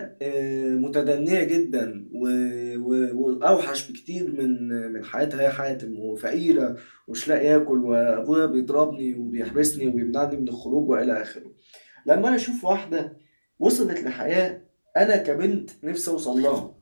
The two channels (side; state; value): both; inverted; correlation -1.00